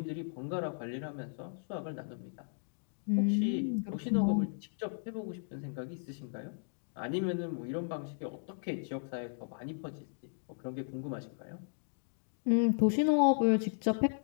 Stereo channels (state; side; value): silent; right; digital silence